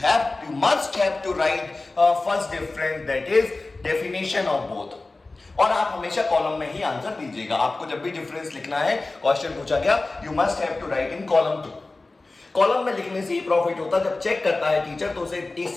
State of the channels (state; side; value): quieter; right; 3.3 dB